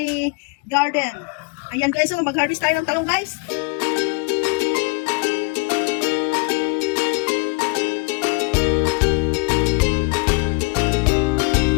garden. Ayan guys, so mag-harvest tayo ng talong guys.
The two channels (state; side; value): quieter; right; 31.8 dB